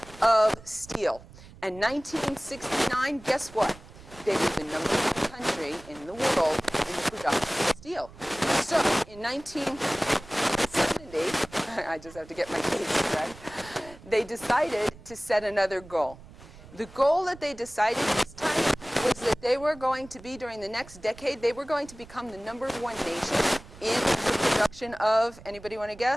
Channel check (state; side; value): noise; right; rumble, 20 dB below the sound